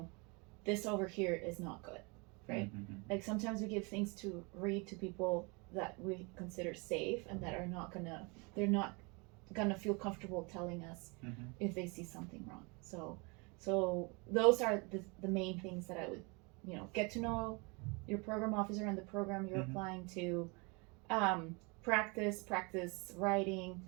this over here is not good, right? Like sometimes we give things to read to people that we consider safe and that they're not gonna feel comfortable telling us if they see something wrong. So those are the main things that I would, get to know your program officer and the program you're applying to, practice writing,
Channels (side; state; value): left; quieter; 30.0 dB